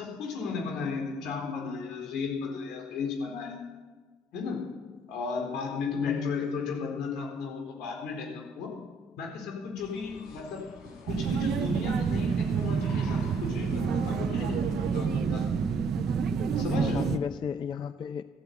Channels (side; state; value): both; normal; correlation 0.63